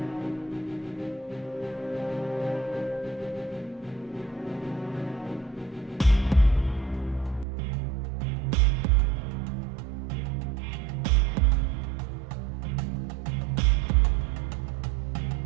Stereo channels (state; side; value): drops out; left; at 7.5 s